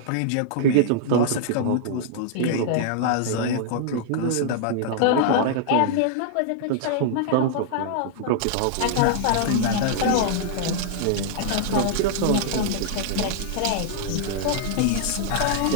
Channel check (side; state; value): both; different; correlation -0.01